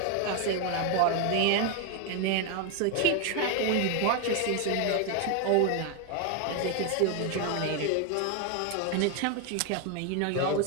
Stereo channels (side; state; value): both; different; correlation 0.01